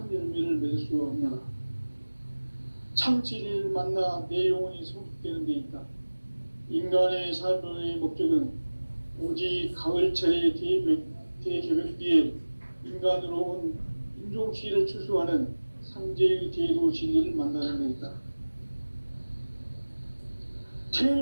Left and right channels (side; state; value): both; inverted; correlation -1.00